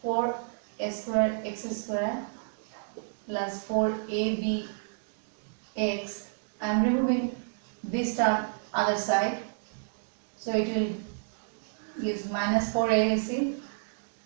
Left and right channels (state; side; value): silent; left; digital silence